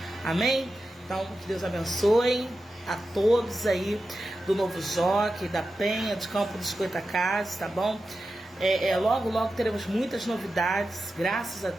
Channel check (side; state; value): both; normal; correlation 0.91